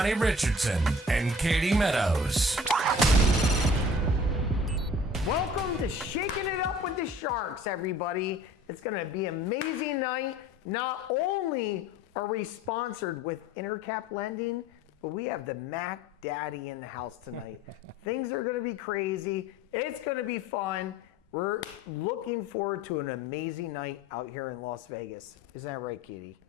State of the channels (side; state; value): both; normal; correlation 0.47